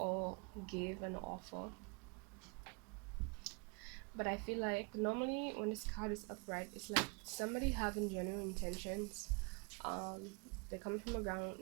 give an offer. But I feel like normally when this card is upright, it's like somebody having genuine intentions. Um, they're coming from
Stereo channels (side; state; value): left; quieter; 33.0 dB